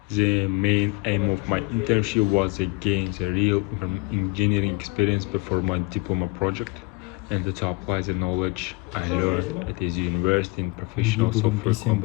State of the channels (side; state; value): right; quieter; 28.4 dB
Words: The main aim of my internship was to gain the real engineering experience before my diploma project and to apply the knowledge I learned at this university in professional software